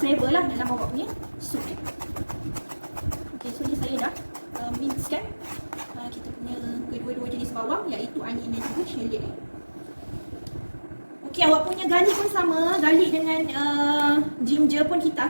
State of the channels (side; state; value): both; inverted; correlation -1.00